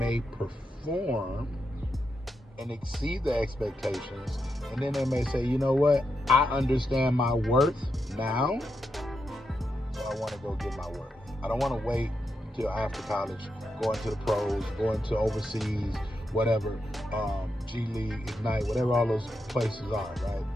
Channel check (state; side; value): normal; both; correlation 0.85